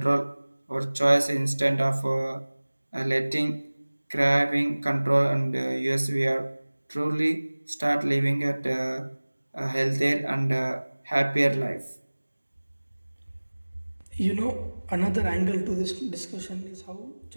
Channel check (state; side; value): inverted; both; correlation -1.00